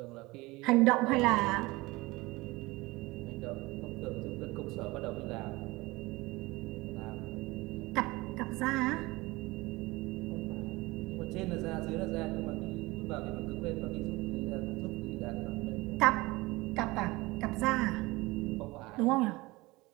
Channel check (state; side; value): quieter; left; 21.7 dB